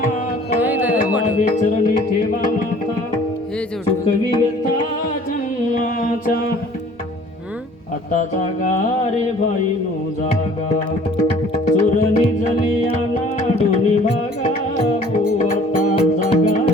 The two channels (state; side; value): normal; both; correlation 0.52